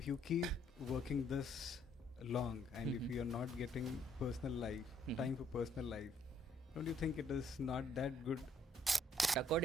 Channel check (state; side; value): normal; both; correlation 0.67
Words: you keep working this long and if you are not getting personal life, time for personal life, don't you think it is not that good?